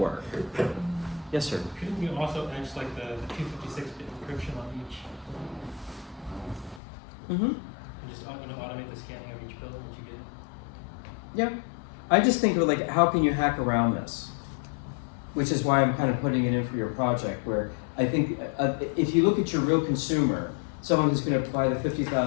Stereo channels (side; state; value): right; drops out; at 6.8 s